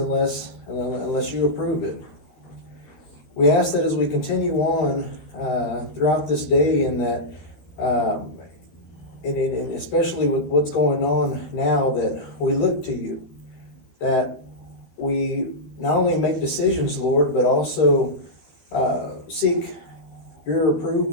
you approve it. We ask that as we continue on throughout this day, and that and especially with what's going on now, that we look to you, that we not only make decisions, Lord, but also seek your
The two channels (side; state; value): right; late; 13 ms